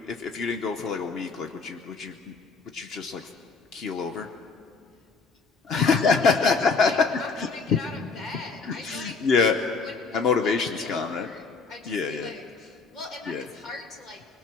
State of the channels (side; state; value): right; quieter; 4.6 dB